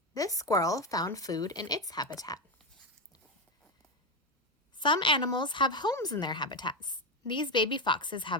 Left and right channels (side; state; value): both; normal; correlation 0.12